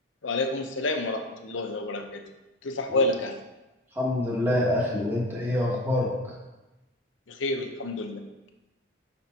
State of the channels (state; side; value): normal; both; correlation 0.27